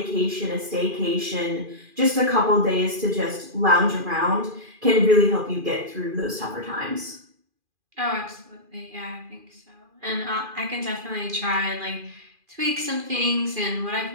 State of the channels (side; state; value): left; late; 2.4 ms